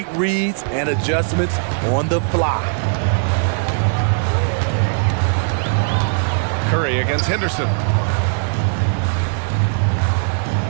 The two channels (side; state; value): left; silent; 63 dB below the other